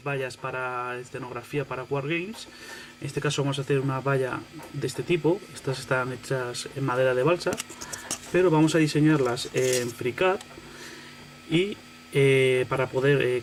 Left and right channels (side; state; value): both; identical; correlation 1.00